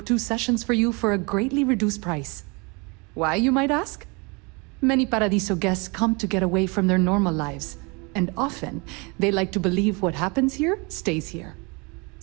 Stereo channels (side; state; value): left; quieter; 29.5 dB